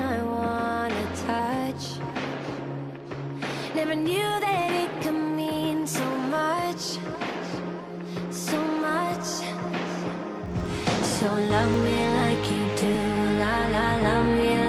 I wanna touch. Never knew that it could mean so much, so much. So love me like you do, la la, love me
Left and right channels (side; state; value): both; identical; correlation 1.00